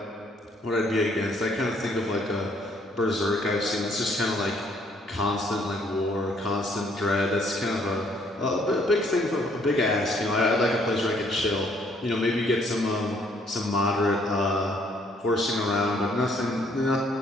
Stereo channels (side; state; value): both; normal; correlation 0.65